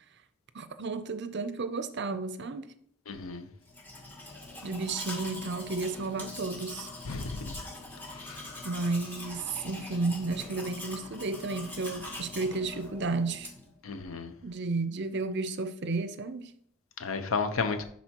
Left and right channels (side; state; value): both; normal; correlation 0.32